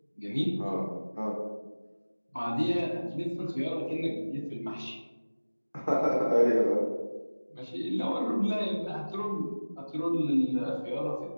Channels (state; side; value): inverted; both; correlation -1.00